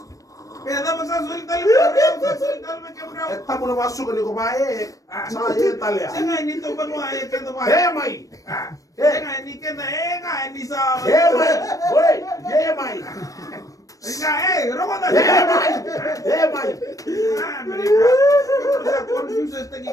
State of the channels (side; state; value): right; late; 0.16 ms